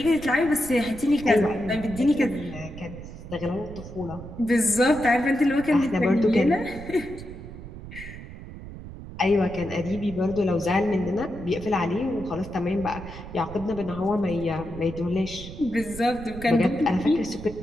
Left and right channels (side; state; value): right; noise; rumble, 13 dB below the sound